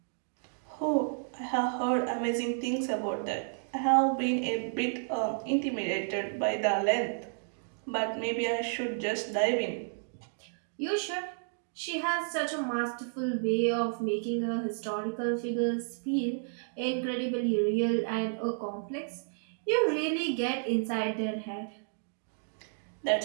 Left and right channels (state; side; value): silent; left; digital silence